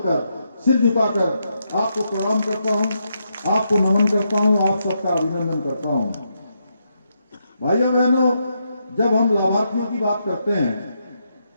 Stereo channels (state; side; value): inverted; both; correlation -0.81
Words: सिर झुकाकर आपको प्रणाम करता हूं, आपको नमन करता हूं, आप सबका अभिनंदन करता हूं। भाइयों बहनों, जब हम लाभार्थियों की बात करते हैं